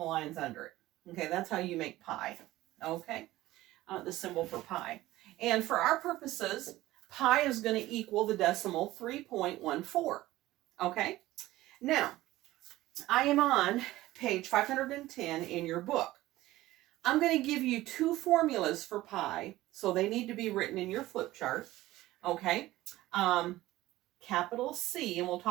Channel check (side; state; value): left; quieter; 16.7 dB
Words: lines under it. Okay. That's how you make pie. Okay. The symbol for pi. And for our purposes, pi is going to equal the decimal 3.14. Okay? Now, I am on page 510 in your book. I'm going to give you two formulas for pi, so they need to be written in your flip chart. Okay? Capital C, and we'll